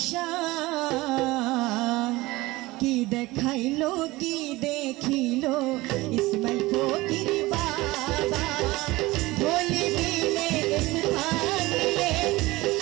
কি দেখাইলো কি দেখিলো ইসমাইল ফকির বাবা ধলি বিলে স্থান নিলে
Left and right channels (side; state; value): left; quieter; 20.1 dB